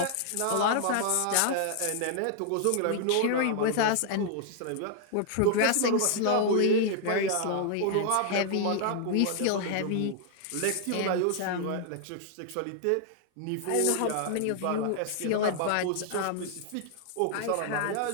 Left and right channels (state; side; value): different; both; correlation -0.01